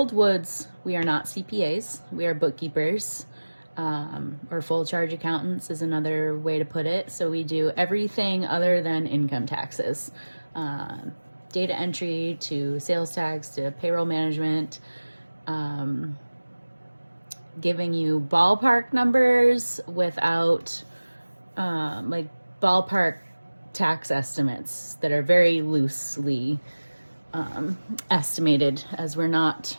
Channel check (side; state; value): both; inverted; correlation -1.00